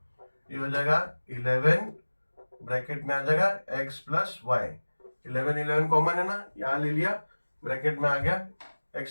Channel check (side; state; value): both; inverted; correlation -1.00